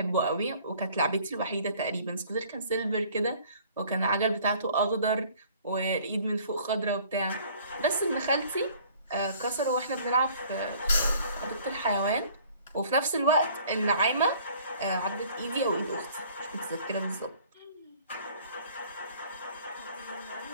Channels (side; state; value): both; inverted; correlation -0.54